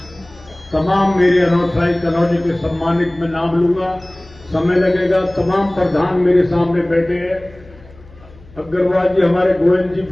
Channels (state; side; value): noise; left; hum, 23 dB below the sound